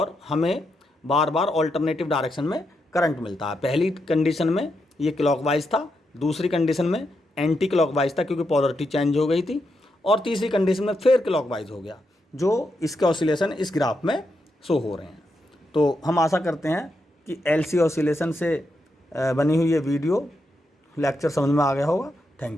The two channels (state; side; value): normal; both; correlation 0.83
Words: हमें बार बार ऑल्टरनेटिव डायरेक्शन में करंट मिलता है। पहली कंडीशन में ये क्लॉकवाइज था, दूसरी कंडीशन में एंटी क्लॉकवाइज था क्योंकि पोलरिटी चेंज हो गई थी, और तीसरी कंडीशन में फिर क्लॉकवाइज हो गया, जो इसके ऑसिलेशन इस ग्राफ में शो हो रहे हैं। तो हम आशा करते हैं कि एलसी ऑसिलेशन से बनी हुई ये वीडियो लेक्चर समझ में आ गया होगा।